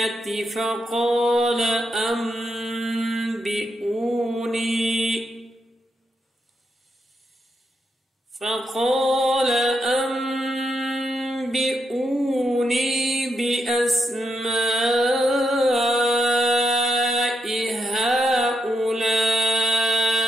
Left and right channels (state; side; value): normal; both; correlation 0.82